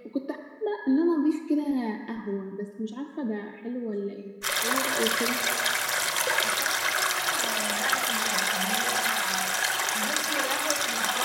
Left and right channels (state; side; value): identical; both; correlation 1.00